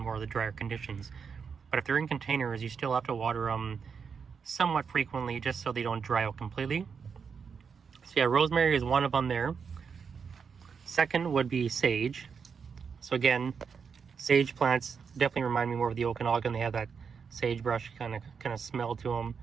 of the drier conditions. But if they're in containers, you still have to water them somewhat frequently just so they don't dry out completely. So yeah, rosemary is one of them there. Second would be sage. So again, sage plants definitely remind me more of the Okanagan. They have that sagebrush kind of smell to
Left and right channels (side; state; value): left; quieter; 6.1 dB